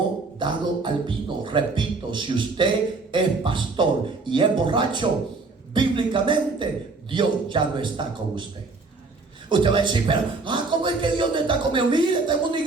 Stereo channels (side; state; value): left; quieter; 3.9 dB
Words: dado al vino. Repito, si usted es pastor y es borracho, bíblicamente Dios ya no está con usted. Usted va a decir, pero ¿cómo es que Dios no está conmigo? Mire, tengo una